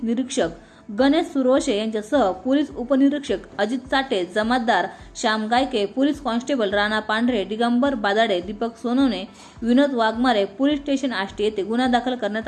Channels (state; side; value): identical; both; correlation 1.00